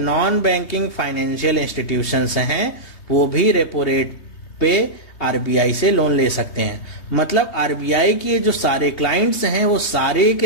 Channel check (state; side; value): late; right; 3.2 ms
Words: बैंकिंग फाइनेंशियल इंस्टीट्यूशंस हैं वो भी रेपो रेट पे आरबीआई से लोन ले सकते हैं। मतलब आरबीआई के जो सारे क्लाइंट्स हैं वो सारे